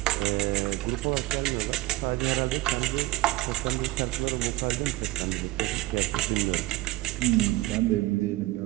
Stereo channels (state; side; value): quieter; left; 18.6 dB